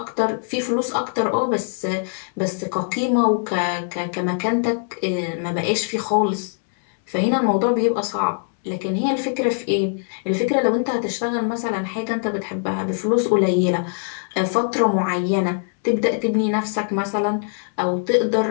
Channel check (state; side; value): silent; right; 64 dB below the other